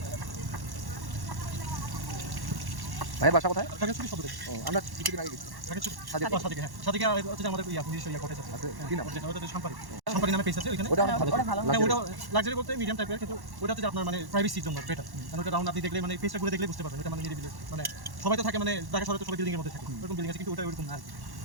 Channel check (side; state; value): left; late; 1.1 ms